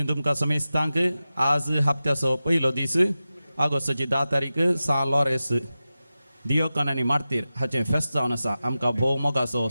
तुमकां समेस्तांक आज हप्त्याचो पयलो दीस ऑगस्टाची 10 तारीख सा लॉरेस दियोकन आनी मार्तीर हाचें फेस्त जावन आसा. आमकां भोव मोगाचो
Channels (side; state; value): both; inverted; correlation -0.94